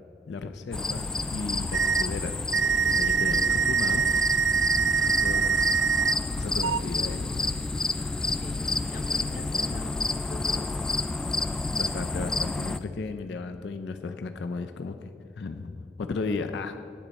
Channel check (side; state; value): both; normal; correlation 0.62